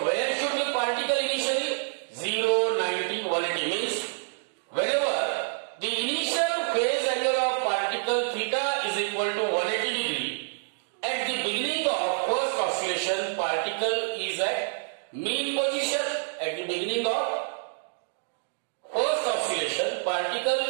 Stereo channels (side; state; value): left; silent; digital silence